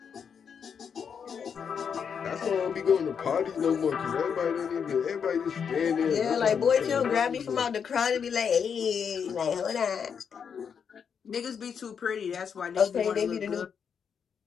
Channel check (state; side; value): quieter; right; 7.0 dB